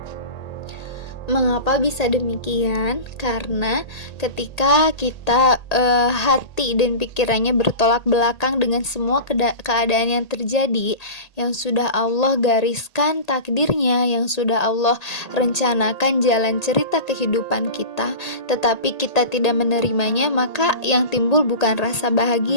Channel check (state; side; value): late; right; 1.8 ms